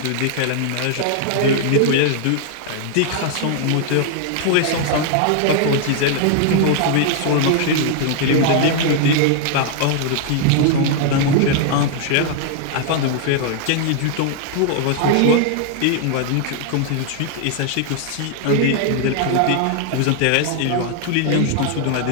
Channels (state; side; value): different; both; correlation 0.00